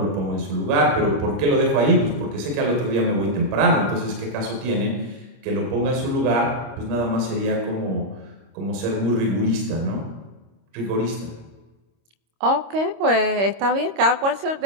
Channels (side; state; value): left; late; 26 ms